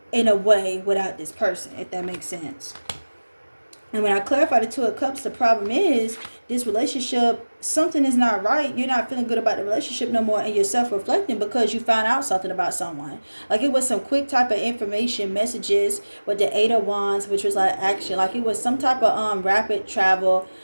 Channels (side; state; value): both; inverted; correlation -1.00